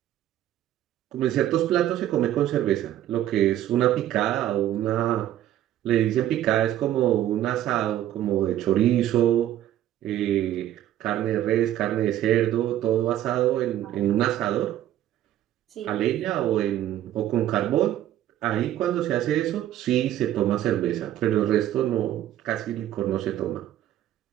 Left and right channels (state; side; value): quieter; left; 12.4 dB